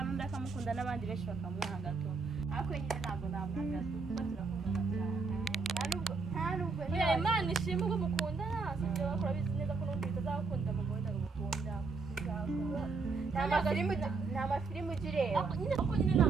undi akamukunda n'abandi benshi bakamwanga to ariko nyine ntabwo namwanga kuko turakundana cyane nta nubwo Imana ishimwe ubwo mukundana sibyo bakora bizi neza ko n'undi bitazakunda mugabo wenda gukunda nta mafilimu ujya ureba nyine kuko nyine ni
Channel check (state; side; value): quieter; left; 4.3 dB